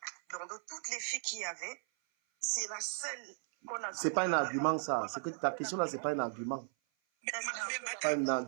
Donc, de toutes les filles qu'il y avait, c'est la seule qu'on a... C'est pas un argument, ça. C'est que ta question là, c'est pas un argument. Mais Pas un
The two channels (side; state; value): left; silent; 53 dB below the other